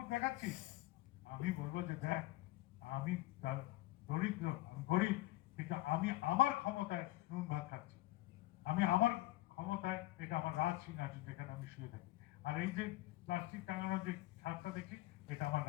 দেখাচ্ছিস। আমি বলবো যে দেখ, আমি দরিদ্র, আমি গরিব, কিন্তু আমি আমার ক্ষমতায় নুন ভাত খাচ্ছি। আমি আমার ক্ষমতায়, এটা আমার রাজ সিংহাসন যেখানে আমি শুয়ে থাকি। আর এই যে প্লাস্টিক টাঙানোর যে ছাদটা দেখছি, এটা আমার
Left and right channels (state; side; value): quieter; right; 17.4 dB